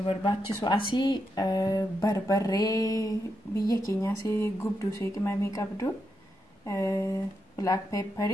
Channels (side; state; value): both; normal; correlation 0.84